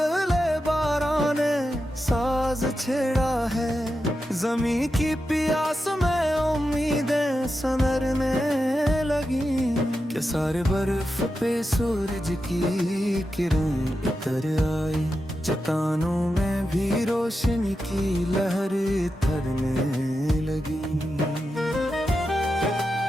बारां ने साज छेड़ा है, जमी की प्यास में उम्मीदें सनरने लगी। के सारे बर्फ पे सूरज की किरण उतर आई, चट्टानों में भी रोशनी की लहर थरने लगी।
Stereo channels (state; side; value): normal; both; correlation 0.89